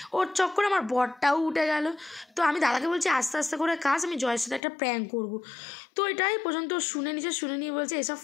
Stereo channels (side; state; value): right; drops out; at 4.6 s